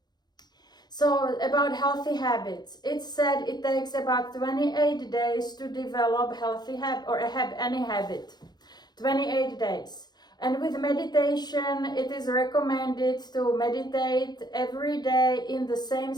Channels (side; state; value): right; late; 0.20 ms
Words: So about healthy habits, it's said it takes about 28 days to develop healthy habit or any habit. 28 days. And with meditation, it is recommended to meditate every day in the same